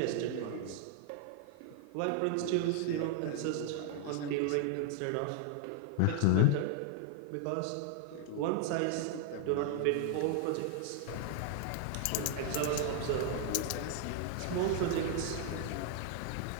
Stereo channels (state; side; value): different; both; correlation 0.00